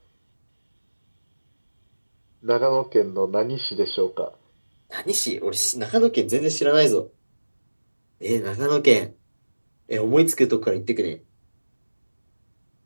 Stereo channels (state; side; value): inverted; both; correlation -1.00